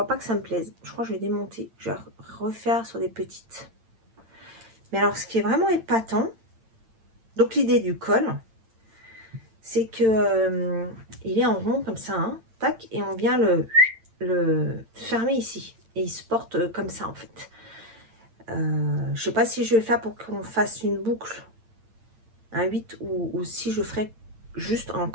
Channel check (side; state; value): left; late; 8.9 ms